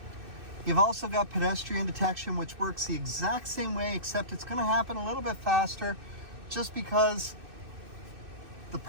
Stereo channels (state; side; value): late; left; 2.6 ms